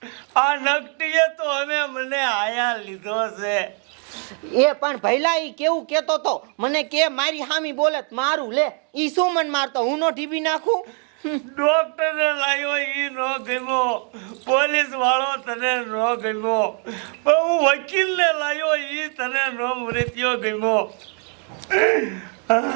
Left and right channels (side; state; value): left; quieter; 39.9 dB